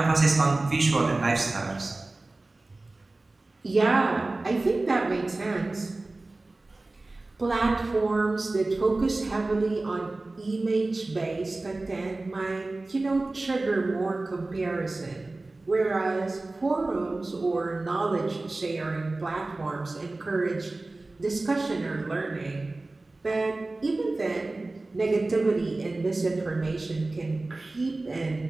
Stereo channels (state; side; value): quieter; left; 3.1 dB